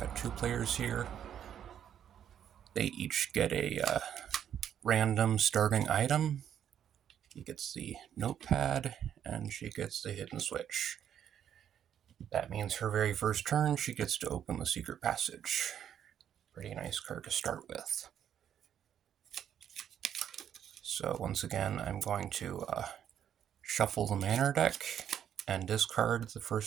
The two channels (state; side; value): quieter; left; 9.5 dB